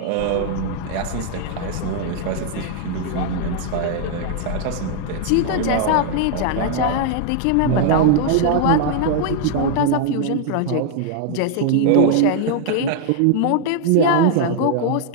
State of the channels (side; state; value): both; different; correlation 0.00